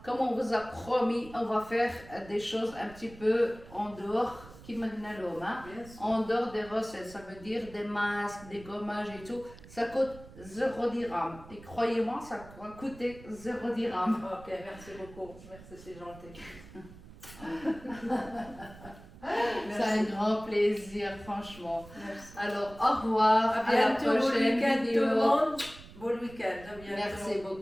Comme on vous a promis, on va faire des choses un petit peu en dehors, en dehors des recettes. Ça veut dire des masques, des gommages et tout. Ça coûte 0 dirham. Et croyez-moi, ça va coûter 0 dirham. Ok, merci beaucoup. Merci, c'est gentil. C'est un grand plaisir, franchement. Merci. Alors, au revoir. À la prochaine vidéo. Bon week-end. Merci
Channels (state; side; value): noise; right; rumble, 19 dB below the sound